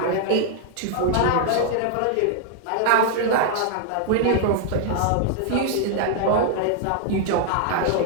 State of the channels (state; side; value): different; both; correlation 0.00